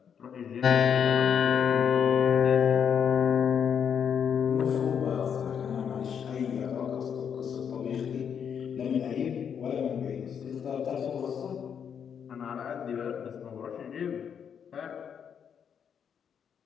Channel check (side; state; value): right; quieter; 7.7 dB